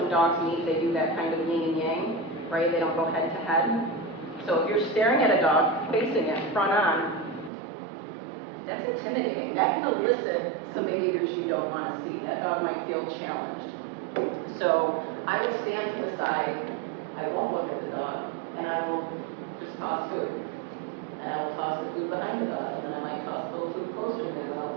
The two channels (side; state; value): left; drops out; at 7.5 s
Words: dogs meet, they do that kind of yin and yang, right? They don't go head to head. So if you're staring at a dog, facing it, front on, that's intimidating. That can elicit some behaviors you don't want to see. That dog might feel challenged. So I will stand to the side, I won't look at the dog, and I will just toss food. And I will toss the food behind the dog, and then I might toss a little food closer to me, and then I'll